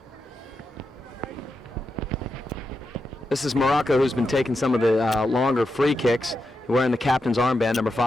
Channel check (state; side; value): normal; both; correlation 0.87